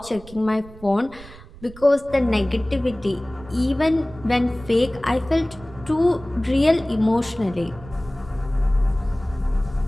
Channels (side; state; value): right; noise; rumble, 18 dB below the sound